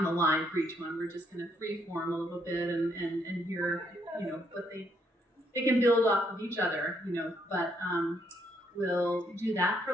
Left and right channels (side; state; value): both; normal; correlation 0.72